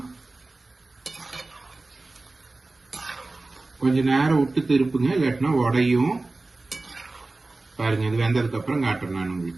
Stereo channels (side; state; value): left; quieter; 3.3 dB